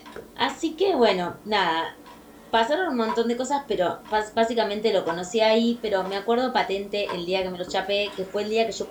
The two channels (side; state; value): both; identical; correlation 1.00